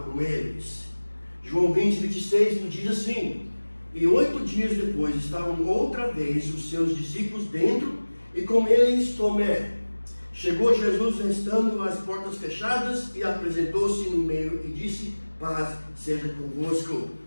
com eles. João 20, 26 nos diz assim: e 8 dias depois estavam outra vez os seus discípulos dentro, e com eles Tomé. Chegou Jesus estando as portas fechadas, e apresentou-se no meio e disse: paz seja convosco.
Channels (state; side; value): inverted; both; correlation -1.00